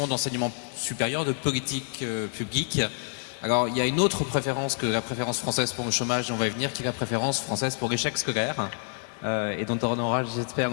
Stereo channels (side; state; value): right; silent; 57 dB below the other